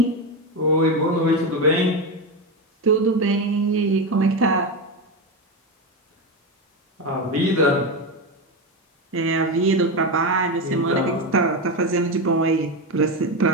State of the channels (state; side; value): normal; both; correlation 0.14